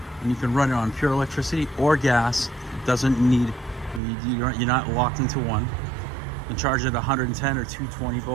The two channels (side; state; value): left; drops out; at 4.0 s